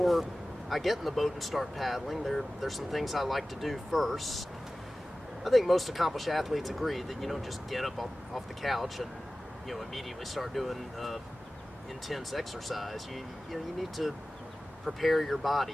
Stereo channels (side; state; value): both; normal; correlation 0.96